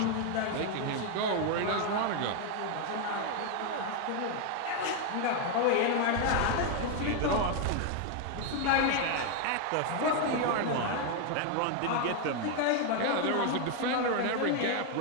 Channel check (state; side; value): different; both; correlation 0.01